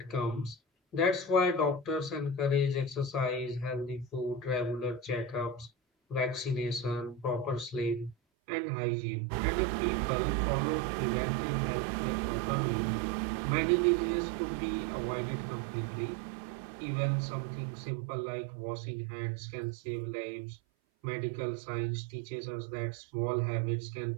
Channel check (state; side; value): drops out; left; at 8.2 s